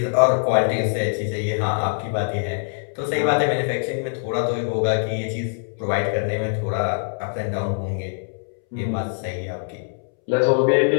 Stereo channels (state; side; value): silent; right; 63 dB below the other